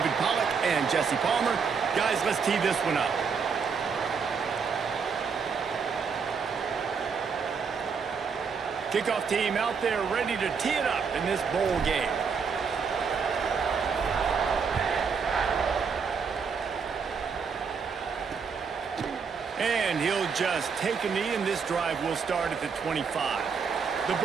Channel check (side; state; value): left; quieter; 5.8 dB